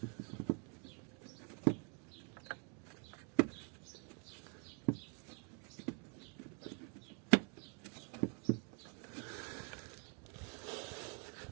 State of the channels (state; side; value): quieter; left; 38.6 dB